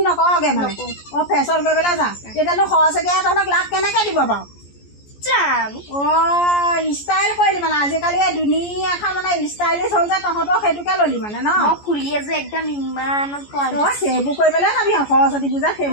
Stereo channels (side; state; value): right; late; 14 ms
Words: নকৰগে মানে। ফেশ্বন কৰিবলৈ যা। তেতিয়াতো সৰস্বতীয়ে তহঁতক লাভ কেনেকে দিব বাৰু? ষ্টাইল কৰিলি মানে। আজিকালি দুনিয়াখন মানে ষ্টাইলিছ হ'ল যে, তহঁতৰ সেইটোকে ললি মানে ন? ফুলিয়ে যে একদম ইমান সেইবোৰ কৰিবলৈ যাবি সৰস্বতী পূজাত,